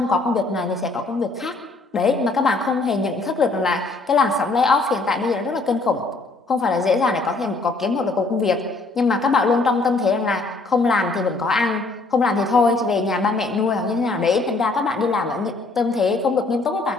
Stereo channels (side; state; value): right; quieter; 3.4 dB